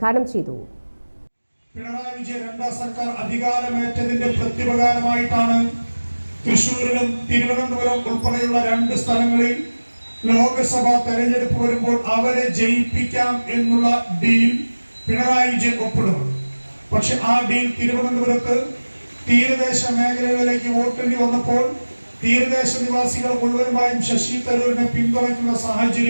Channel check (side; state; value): both; inverted; correlation -1.00